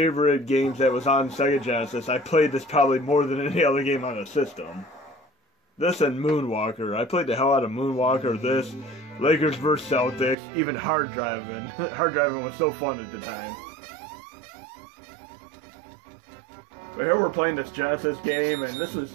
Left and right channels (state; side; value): drops out; left; at 10.4 s